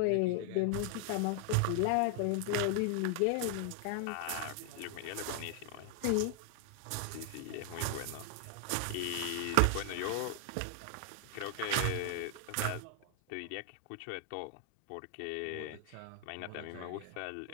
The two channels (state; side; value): different; both; correlation 0.00